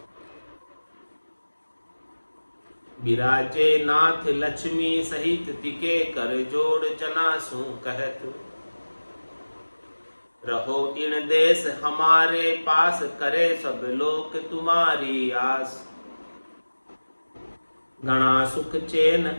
विराजे नाथ लक्ष्मी सहित, तिके कर जोड़ जना सु कहत। रहो इन देश हमारे पास, करे सब लोक तुम्हारी आस। गणा सुख चैन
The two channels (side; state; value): both; inverted; correlation -1.00